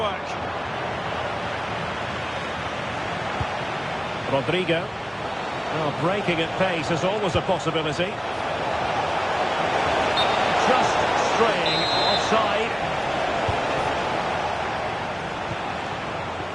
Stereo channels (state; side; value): identical; both; correlation 1.00